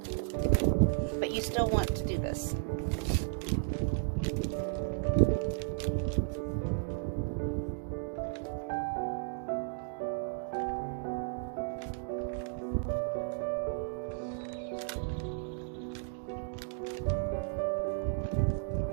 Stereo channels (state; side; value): silent; left; digital silence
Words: But you still want to do this.